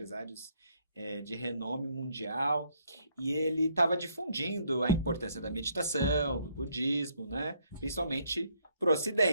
de renome mundial, e ele estava difundindo a importância da meditação, do budismo, né? Principalmente para o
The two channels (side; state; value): both; inverted; correlation -0.69